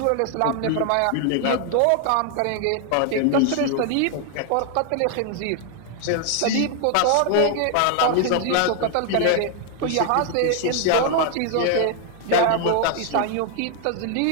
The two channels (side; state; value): both; different; correlation 0.00